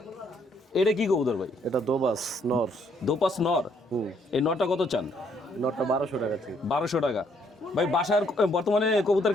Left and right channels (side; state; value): both; normal; correlation 0.69